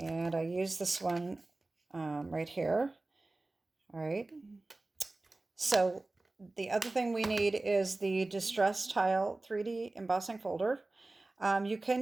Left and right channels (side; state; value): left; quieter; 3.0 dB